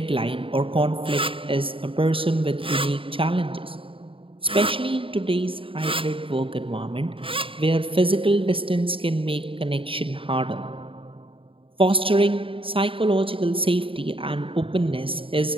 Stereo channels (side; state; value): left; late; 0.26 ms